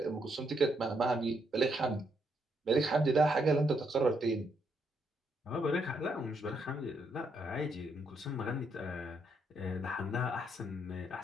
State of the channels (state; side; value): normal; both; correlation 0.76